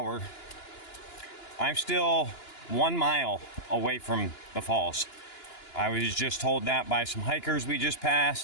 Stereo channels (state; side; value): late; right; 2.9 ms